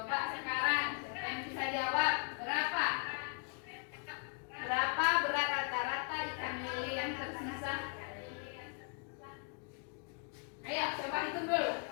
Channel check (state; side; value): quieter; right; 40.0 dB